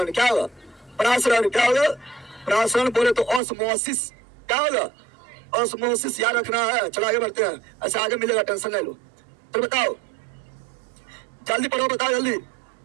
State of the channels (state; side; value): drops out; left; at 3.4 s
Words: क्या होगा? परासरण क्या होगा? परासरण बोले तो ऑस्मोसिस, क्या होगा? ऑस्मोसिस याद रखना है। चलो आगे बढ़ते हैं, ऐसे आगे मिलेगा, टेंशन नहीं लो। तो बताओ, जल्दी पढ़ो, बताओ जल्दी,